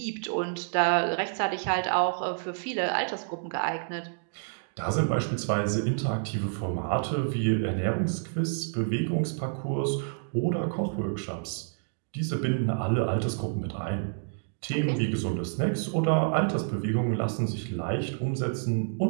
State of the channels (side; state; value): left; silent; digital silence